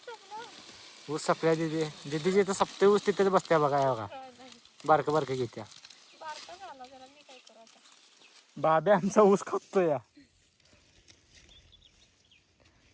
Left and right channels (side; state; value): both; identical; correlation 1.00